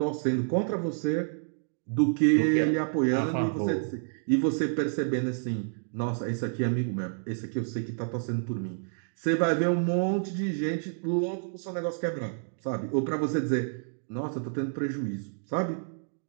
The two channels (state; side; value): silent; left; digital silence